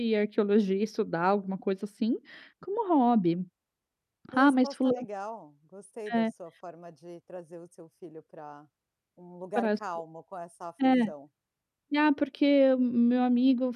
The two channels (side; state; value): both; identical; correlation 1.00